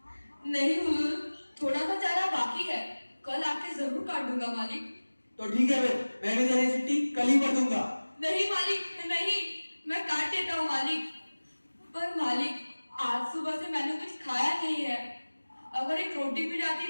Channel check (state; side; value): inverted; both; correlation -1.00